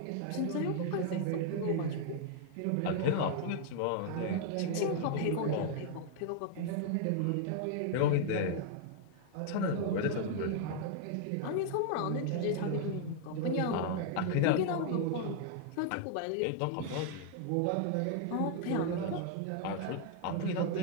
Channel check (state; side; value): different; both; correlation 0.00